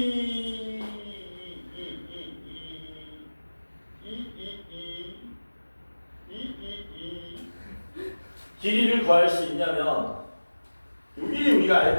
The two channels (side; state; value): both; inverted; correlation -1.00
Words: 길이를 구할 수 있냐면 요 길이 우리가